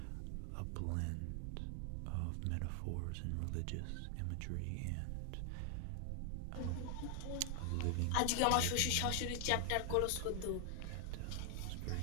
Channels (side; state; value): both; different; correlation 0.00